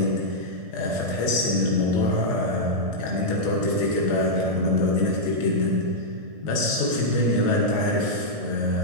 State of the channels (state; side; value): late; left; 1.6 ms